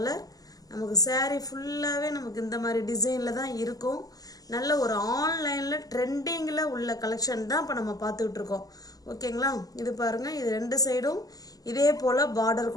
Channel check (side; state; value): right; late; 0.18 ms